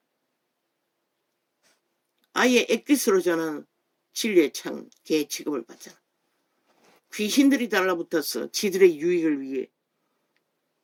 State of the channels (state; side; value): identical; both; correlation 1.00